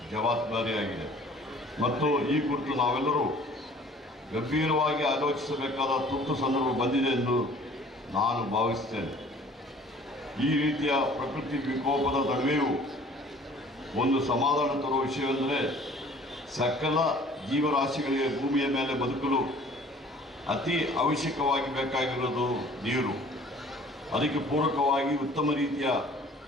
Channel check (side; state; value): both; normal; correlation 0.51